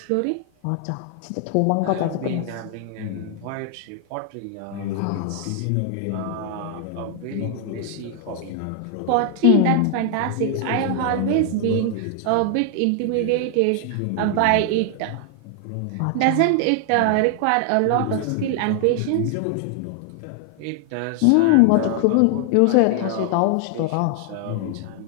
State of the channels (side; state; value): both; different; correlation 0.00